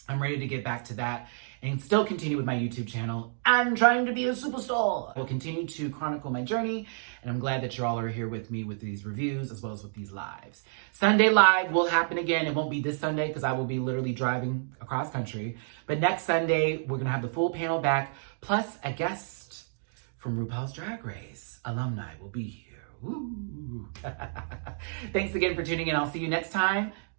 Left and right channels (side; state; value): left; silent; digital silence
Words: I'm ready to get back to that and still continue with my YouTube channel. I'm trying to be a superstar. I'll continue to chronicle my journey, and I'm glad that you all are here with me with these reviews as well as with these lives. Sunday Live will happen again. It won't be this Sunday because I will be literally driving across country. But next Sunday, we're going to have the full panel back, plus a guest from RuPaul's Drag Race. Alumni will be here. Woo. Thanks again for tuning in. I'll see you next time.